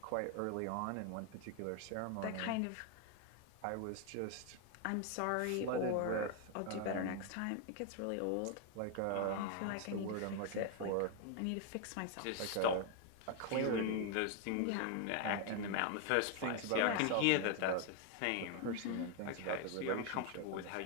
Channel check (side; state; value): both; different; correlation 0.00